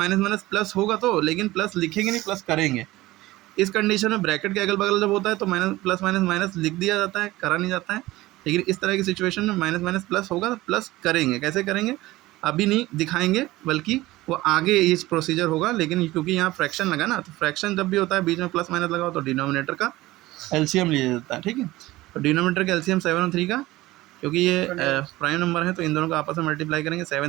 माइनस प्लस होगा तो, लेकिन प्लस लिखेंगे नहीं, प्लस करेंगे। इस कंडीशन में ब्रैकेट के अगल बगल जब होता है तो माइनस प्लस माइनस माइनस लिख दिया जाता है, करा नहीं जाता है। लेकिन इस तरह की सिचुएशन में माइनस माइनस प्लस होगा तो प्लस करेंगे। कैसे करेंगे अभी नहीं दिखाएंगे, बल्कि वो आगे इस प्रोसीजर होगा। लेकिन क्योंकि यहाँ फ्रैक्शन लगा ना, तो फ्रैक्शन जब भी होता है बीच में प्लस माइनस लगाओ तो डिनोमिनेटर का एलसीएम लिया जाता है। ठीक है, तो डिनोमिनेटर का एलसीएम 7 और 3 का, क्योंकि ये प्राइम नंबर है तो इन दोनों को आपस में मल्टीप्लाई करेंगे।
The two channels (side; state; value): left; quieter; 18.2 dB